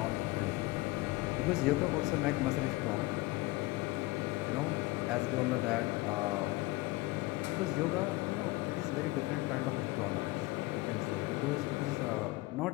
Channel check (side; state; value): right; quieter; 20.6 dB